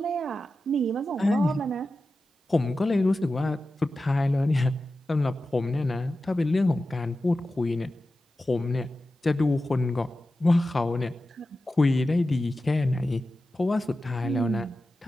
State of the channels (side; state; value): both; normal; correlation 0.93